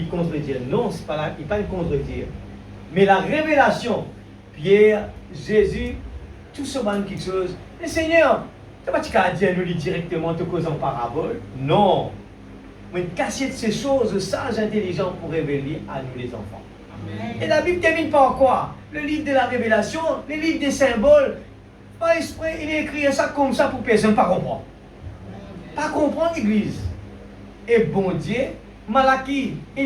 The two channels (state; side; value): identical; both; correlation 1.00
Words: contredire. Non, c'est pas il pas le contredire. Mais la révélation, Pierre, Jésus, tout ce monde quelque chose. Mais Seigneur, tu vas pas dire nous directement te cause en parabole. Non. Mais casser de ces choses, sages, intelligents pour révéler à nous les enfants. Amen. Et la Bible termine par quoi? Le livre de la révélation, le livre des symboles. Par esprit, il est écrit ça comme ça pour personne ne pas comprendre. Pas comprendre l'église. Et bon Dieu, Malaki,